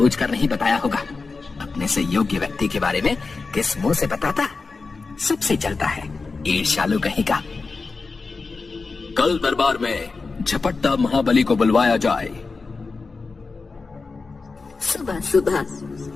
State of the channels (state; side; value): quieter; right; 4.2 dB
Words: नहीं बताया होगा। अपने से योग्य व्यक्ति के बारे में किस मुंह से बताता? सबसे चलता है, ईर्ष्यालु कहीं का। कल दरबार में झपट्टा महाबली को बुलवाया जाए। सुबह सुबह